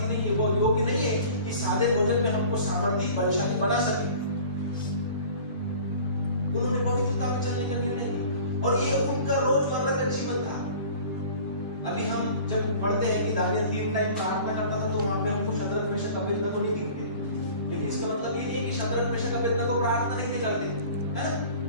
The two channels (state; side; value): inverted; both; correlation -0.44